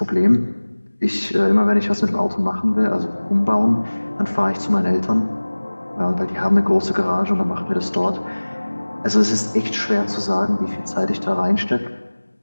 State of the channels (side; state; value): both; inverted; correlation -1.00